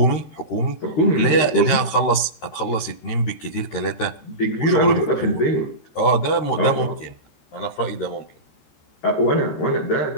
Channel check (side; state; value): right; late; 13 ms